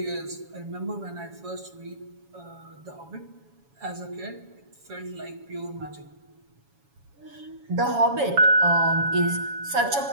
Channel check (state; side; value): late; left; 7.2 ms